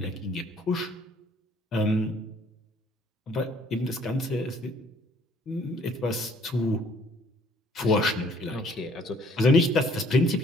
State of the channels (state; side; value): normal; both; correlation 0.60